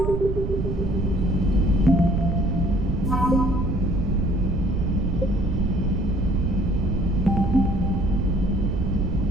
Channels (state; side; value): noise; right; rumble, 3 dB below the sound